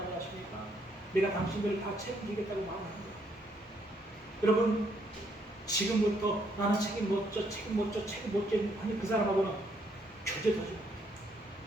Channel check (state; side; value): normal; both; correlation 0.71